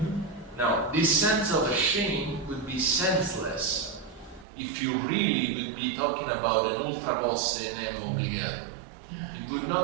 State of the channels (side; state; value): left; drops out; at 4.5 s